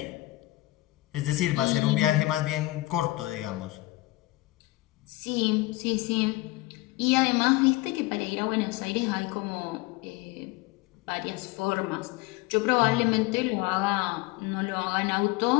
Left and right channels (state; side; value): quieter; right; 19.6 dB